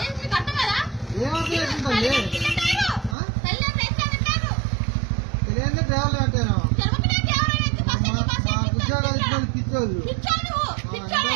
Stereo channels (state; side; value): drops out; left; at 3.2 s